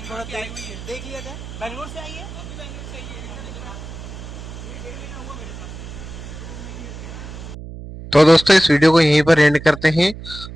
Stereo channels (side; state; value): right; noise; hum, 12 dB below the sound